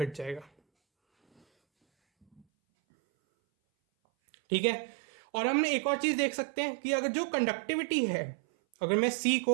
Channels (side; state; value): left; drops out; at 2.5 s